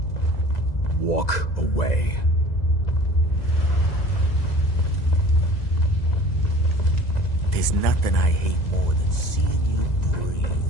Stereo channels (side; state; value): right; late; 2.0 ms